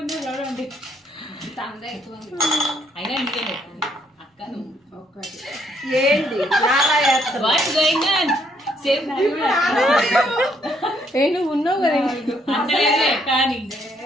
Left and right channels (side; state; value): both; normal; correlation 0.70